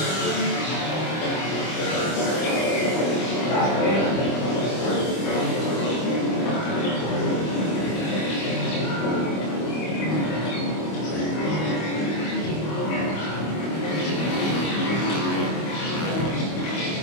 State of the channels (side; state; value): right; late; 25 ms